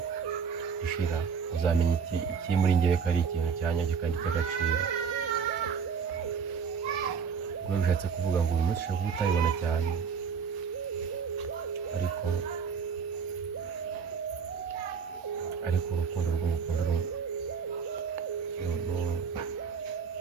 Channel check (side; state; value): left; quieter; 6.4 dB